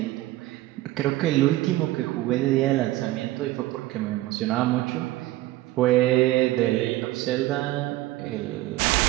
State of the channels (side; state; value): left; quieter; 16.8 dB